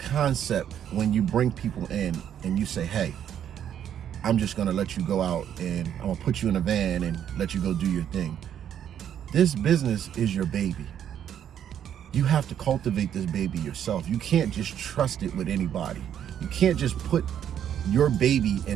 when you bring people in and you say, hey, I'm just going to let you go out and I'm going to put you in a van and let you go do your thing. This business is your baby. You have to cultivate this baby yourself. You can't just trust it with anybody. You can't just put your baby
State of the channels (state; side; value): quieter; left; 9.6 dB